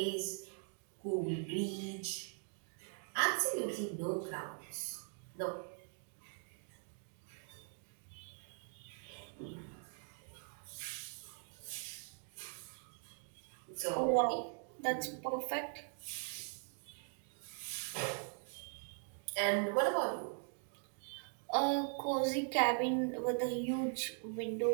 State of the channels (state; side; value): silent; left; 50 dB below the other